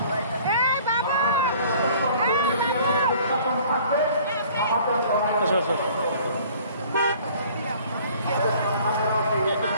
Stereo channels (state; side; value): inverted; both; correlation -0.52